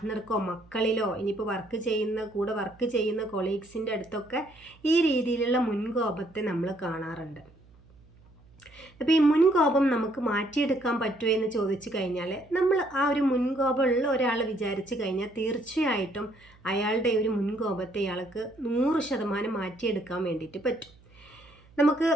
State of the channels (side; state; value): right; noise; hum, 27 dB below the sound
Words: മക്കളിലോ ഇനിയിപ്പോൾ കൂടെ വർക്ക് ചെയ്യുന്ന കൊളീഗ്സിൻ്റെ അടുത്തൊക്കെ ഈ രീതിയിലുള്ള മുൻകോപത്തെ നമ്മൾ കാണാറുണ്ട്. അപ്പോൾ ഈ മുൻകോപം നമുക്ക് മാറ്റിയെടുക്കാൻ പറ്റുമോ എന്ന് ചോദിച്ചു കഴിഞ്ഞാൽ, നമ്മൾ ആ ഒരു മുൻകോപമുള്ള ഒരാൾ വിചാരിച്ചു കഴിഞ്ഞാൽ തീർച്ചയായിട്ടും അയാളുടെ ഒരു മുൻകോപത്തെ ഇയാൾക്ക് 100% മാറ്റിയെടുക്കാൻ വേണ്ടിയിട്ട് പറ്റും. നമുക്ക്